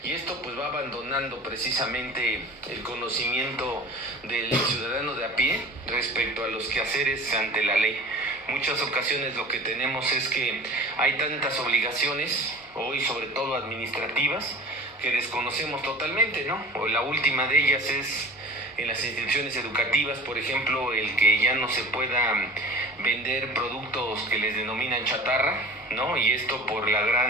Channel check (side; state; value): both; normal; correlation 0.39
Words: y esto pues va abandonando precisamente el conocimiento del ciudadano de a pie respecto a los quehaceres ante la ley. Muchas ocasiones lo que tenemos es que hay tantas obligaciones, hoy sobre todo administrativas, que desconocemos totalmente, ¿no? O la última de ellas es en las instituciones educativas, por ejemplo, el que ya no se pueda vender productos que les denominan chatarra, ¿no? Y esto por el